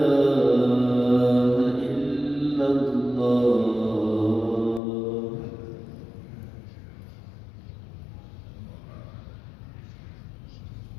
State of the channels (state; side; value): drops out; right; at 4.8 s